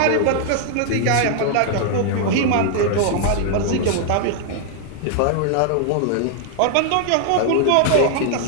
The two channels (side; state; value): both; different; correlation 0.00